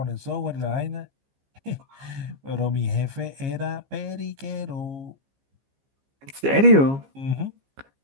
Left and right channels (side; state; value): left; late; 15 ms